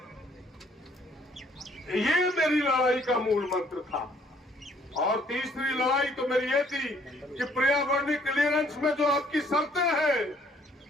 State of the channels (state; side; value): normal; both; correlation 0.63